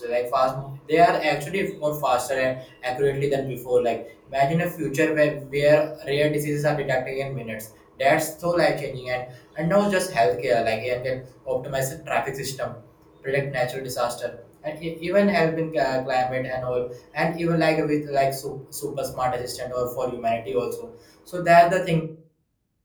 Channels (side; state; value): both; identical; correlation 1.00